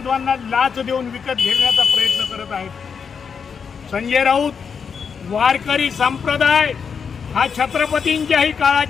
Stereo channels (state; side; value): quieter; right; 6.3 dB